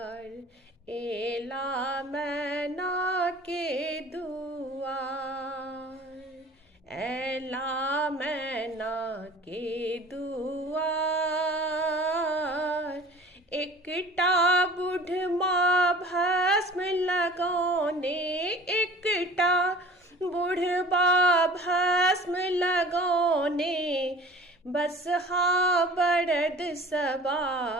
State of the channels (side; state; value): both; normal; correlation 0.44